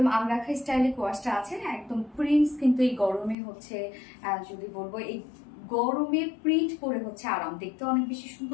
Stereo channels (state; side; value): drops out; right; at 3.4 s